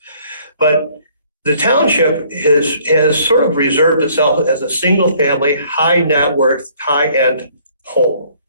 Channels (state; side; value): inverted; both; correlation -0.60